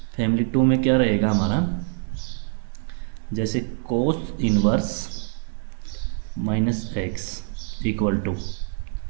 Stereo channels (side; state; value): left; silent; digital silence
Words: फैमिली 2 में क्या रहेगा हमारा, जैसे cos inverse -x equal to